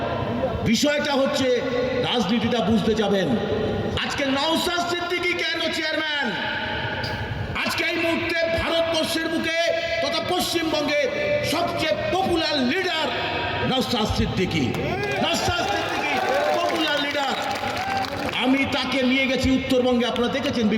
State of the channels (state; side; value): identical; both; correlation 1.00